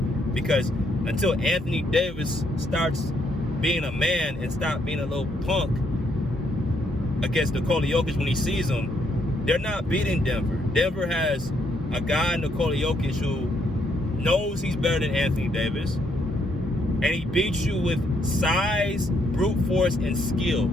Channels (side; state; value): both; normal; correlation 0.73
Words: because until Anthony Davis starts being a man and stop being a little punk against Nikola Jokic when he sees him, they're not beating Denver. Denver has a guy, Nikola Jokic, who knows he's better than Anthony Davis, and he beats you with size, brute force, and skill.